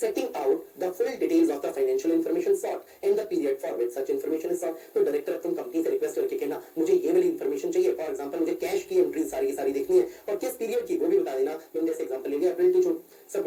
out the full details of the financial information sought and the period for which such information is sought। तो director तुम company से request करके कहना मुझे ये वाली information चाहिए, for example मुझे कैश की एंट्री सारी की सारी देखनी है और किस पीरियड की वो भी बता देना। मैंने जैसे एग्जांपल ले लिया अप्रैल to June. Sub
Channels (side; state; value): both; identical; correlation 1.00